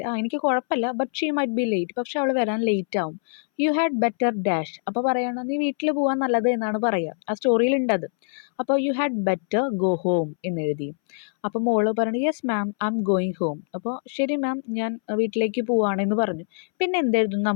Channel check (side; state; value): right; silent; 62 dB below the other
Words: എനിക്ക് കുഴപ്പമില്ല, but she might be late, പക്ഷെ അവൾ വരാൻ ലേറ്റ് ആവും. U had better dash. അപ്പോൾ പറയണം, നീ വീട്ടിൽ പോകാൻ നല്ലത് എന്നാണ് പറയുക. ആ സ്റ്റോറിയിലുണ്ടത്. അപ്പോൾ you had better go home എന്നെഴുതി. അപ്പോൾ മോള് പറഞ്ഞു, yes ma'am I am going home. അപ്പോൾ ശരി മാം, ഞാൻ വീട്ടിലേക്ക് പോവുകയാണെന്ന് പറഞ്ഞു. പിന്നെ എന്തെഴുതുന്നു